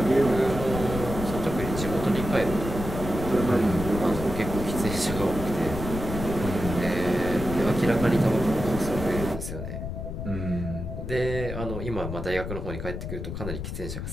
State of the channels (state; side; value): noise; left; rumble, 6 dB below the sound